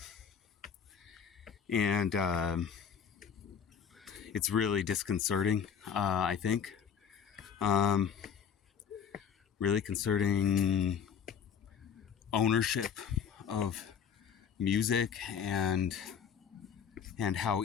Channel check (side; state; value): right; quieter; 7.4 dB